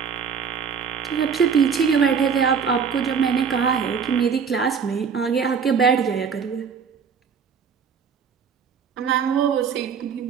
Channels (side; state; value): left; quieter; 6.5 dB